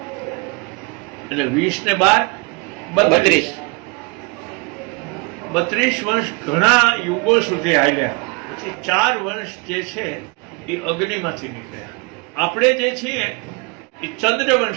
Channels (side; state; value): left; quieter; 28.9 dB